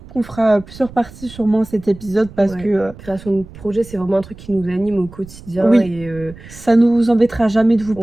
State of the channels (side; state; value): right; noise; rumble, 18 dB below the sound